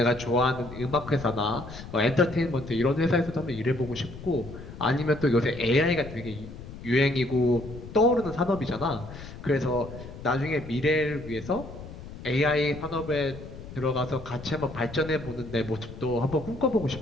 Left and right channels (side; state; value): left; noise; rumble, 13 dB below the sound